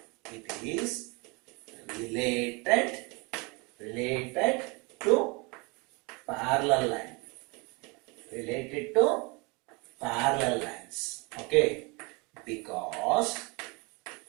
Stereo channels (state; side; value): quieter; left; 28.4 dB